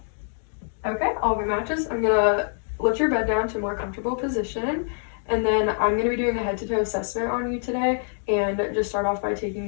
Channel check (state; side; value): silent; right; 62 dB below the other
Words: Okay, all of your matches. I'm gonna lift your bed down to a more comfortable position, and then I'm gonna be doing a head-to-toe assessment on you today, and just start off by taking